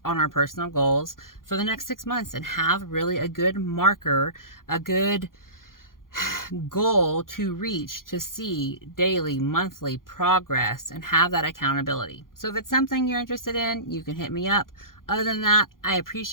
on our personal goals for the next 6 months and have really a good marker, a good goal to reach, to see daily, monthly progress and have that accountability. So if it's something you're interested in, you can hit me up. Other than that, I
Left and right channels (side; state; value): right; late; 0.91 ms